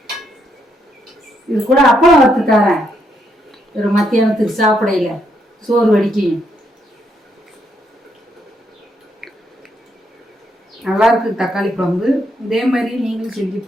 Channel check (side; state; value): both; normal; correlation 0.76